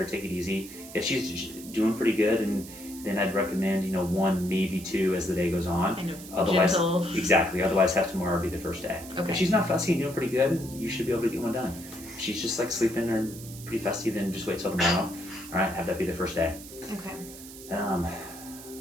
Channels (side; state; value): right; noise; hiss, 15 dB below the sound